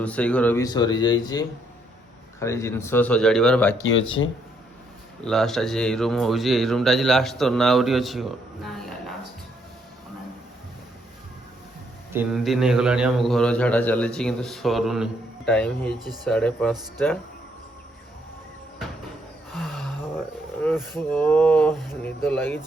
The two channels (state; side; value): normal; both; correlation 0.72